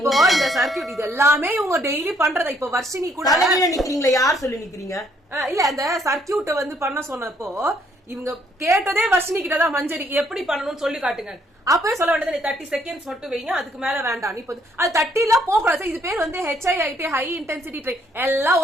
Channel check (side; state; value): both; normal; correlation 0.68